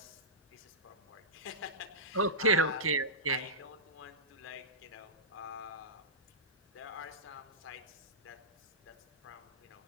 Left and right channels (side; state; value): both; normal; correlation -0.17